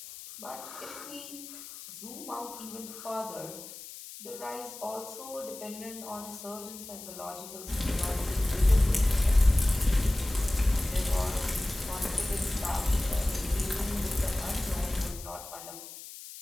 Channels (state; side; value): noise; left; hiss, 13 dB below the sound